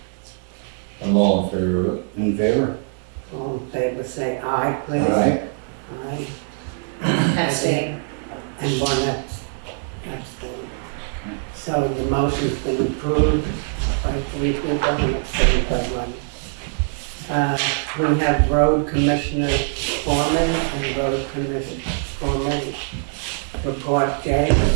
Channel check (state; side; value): silent; left; 55 dB below the other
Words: I'm all in favor of it. In favor? All in favor, say aye, please. Aye. Aye. Abstain. And one abstain. So the motion's been approved by 3 people and abstained by 1. We have Road Commissioner Foreman and Road Commissioner Foreman report. Jay